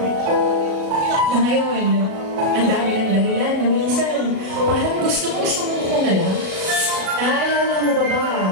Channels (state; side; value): late; left; 37 ms